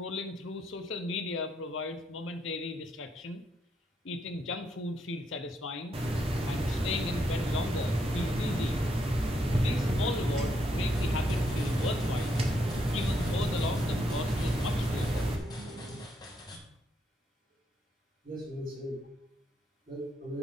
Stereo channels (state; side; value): normal; both; correlation 0.77